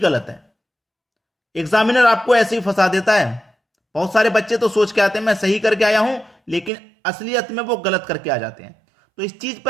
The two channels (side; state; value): left; drops out; at 6.7 s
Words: है। एग्जामिनर आपको ऐसे ही फंसा देता है। बहुत सारे बच्चे तो सोच के आते हैं मैं सही करके आया हूं, लेकिन असलियत में वो गलत करके आ जाते हैं। तो इस चीज पर